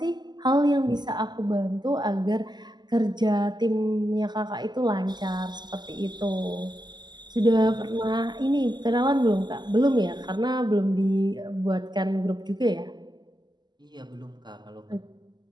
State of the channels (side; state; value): left; late; 0.21 ms